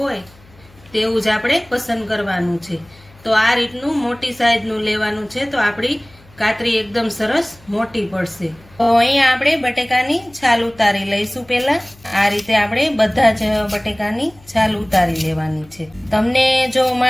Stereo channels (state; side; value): noise; left; hum, 26 dB below the sound